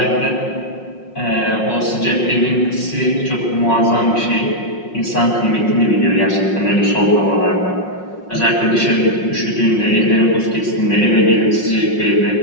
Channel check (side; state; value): right; late; 5.5 ms